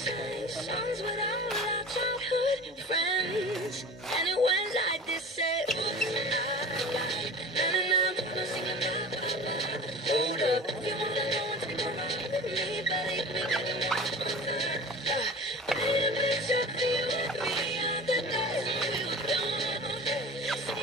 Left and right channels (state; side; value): normal; both; correlation 0.37